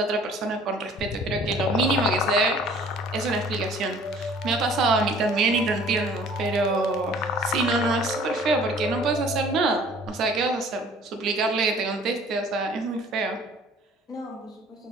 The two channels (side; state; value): both; normal; correlation 0.52